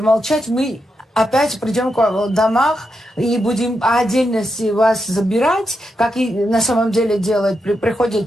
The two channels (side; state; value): both; normal; correlation 0.85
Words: мы опять придем к вам в домах и будем отдельно вас забирать, как и на самом деле делают.